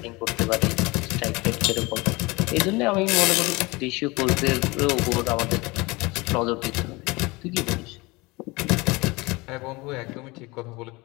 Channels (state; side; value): quieter; right; 23.8 dB